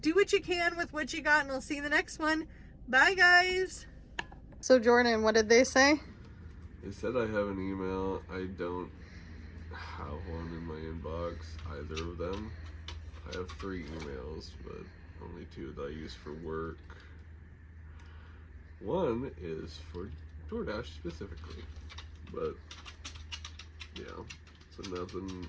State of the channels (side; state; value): both; identical; correlation 1.00